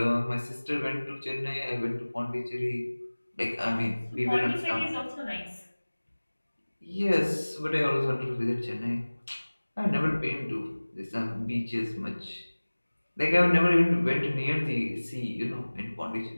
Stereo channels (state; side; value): inverted; both; correlation -1.00